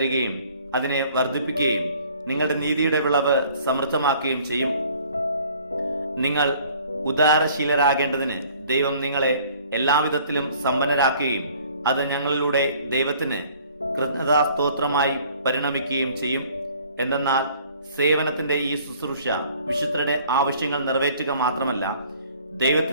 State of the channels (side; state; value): both; inverted; correlation -0.55